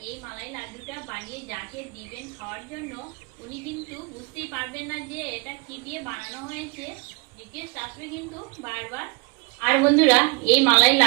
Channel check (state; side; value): quieter; left; 28.5 dB